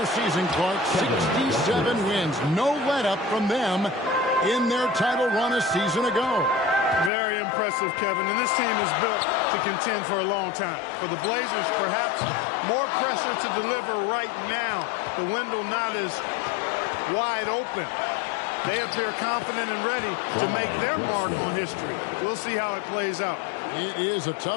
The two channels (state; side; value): drops out; right; at 7.1 s